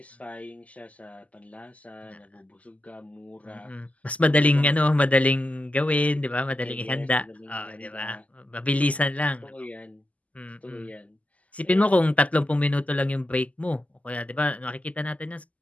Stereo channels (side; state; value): right; late; 0.072 ms